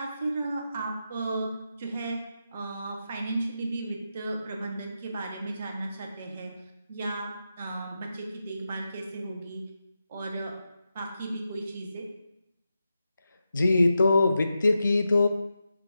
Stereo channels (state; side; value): inverted; both; correlation -0.89